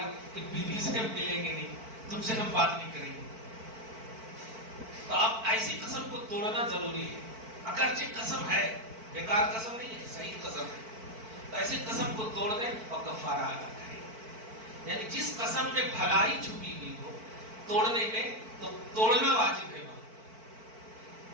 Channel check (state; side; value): late; left; 4.5 ms